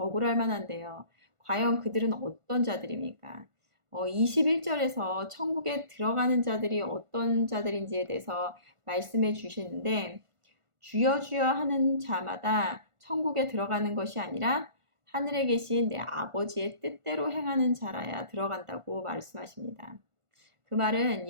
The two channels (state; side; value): late; left; 1.5 ms